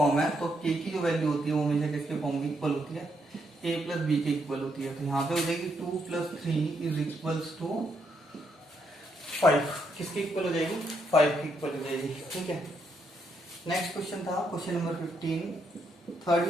है, तो के की जो वैल्यू होती है वो हमेशा किसके फॉर्म की इक्वल होती है? ए प्लस बी के इक्वल होती है। तो यहाँ पे हो जाएगी 2 प्लस 3 इज इक्वल्स टू 5। किसकी इक्वल हो जाएगी? 5 की इक्वल हो जाएगी, ठीक है। नेक्स्ट क्वेश्चन था क्वेश्चन नंबर 15, थर्ड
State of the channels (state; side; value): normal; both; correlation 0.77